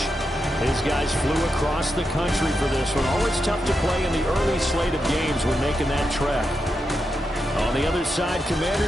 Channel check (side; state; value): both; normal; correlation 0.86